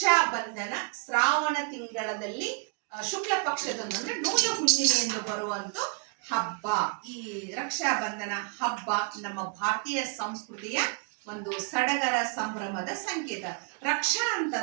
Bandhan Shravana ತಿಂಗಳಲ್ಲಿ ಶುಕ್ಲ ಪಕ್ಷದಂದು ಅಂದ್ರೆ ನೂಲ ಹುಣ್ಣಿಮೆಯನ್ನು ಬರುವಂತ ಹಬ್ಬ. ಈ ರಕ್ಷಾ ಬಂಧನ ಹಬ್ಬ ನಮ್ಮ ಭಾರತೀಯ ಸಂಸ್ಕೃತಿಯ ಒಂದು ಸಡಗರ ಸಂಭ್ರಮದ ಸಂಕೇತ. ರಕ್ಷಾ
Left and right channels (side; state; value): left; quieter; 38.6 dB